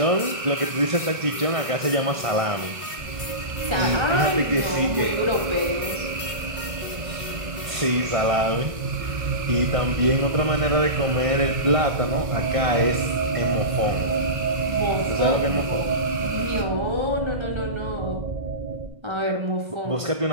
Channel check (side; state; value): left; late; 1.5 ms